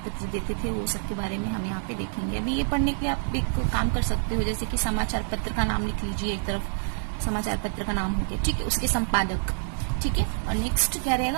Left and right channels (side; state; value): left; silent; 59 dB below the other